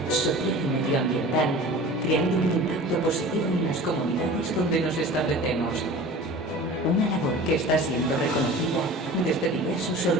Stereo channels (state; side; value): normal; both; correlation 0.39